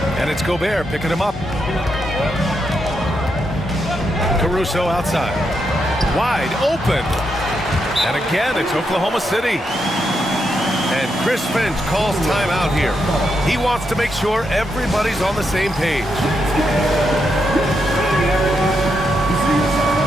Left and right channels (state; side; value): normal; both; correlation 0.82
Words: And it's Gobert picking him up. Caruso outside. Wide open. And again, it's Oklahoma City. And Chris Finch calls timeout here. He wants to make sure everybody's on the same page.